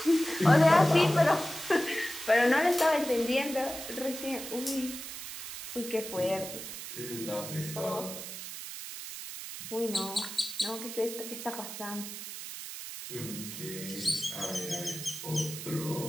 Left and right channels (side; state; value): right; noise; hiss, 9 dB below the sound